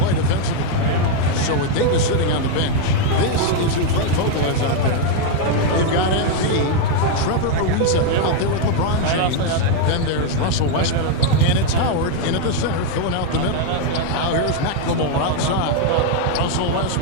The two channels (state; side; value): different; both; correlation 0.00